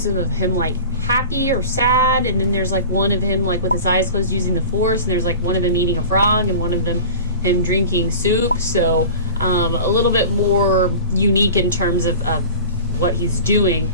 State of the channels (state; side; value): inverted; both; correlation -0.37